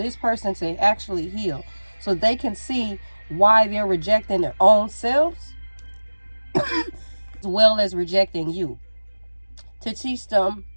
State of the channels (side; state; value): both; inverted; correlation -1.00